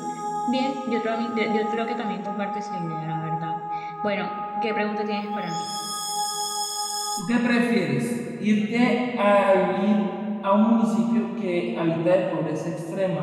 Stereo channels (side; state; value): both; identical; correlation 1.00